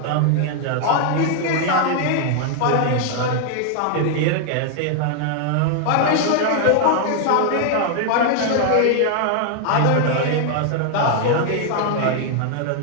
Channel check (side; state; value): both; different; correlation 0.00